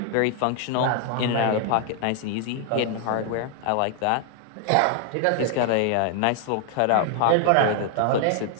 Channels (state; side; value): different; both; correlation 0.00